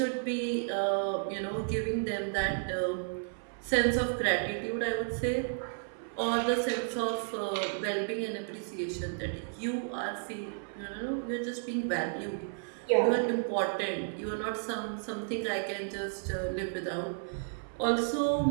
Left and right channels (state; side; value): silent; left; 55 dB below the other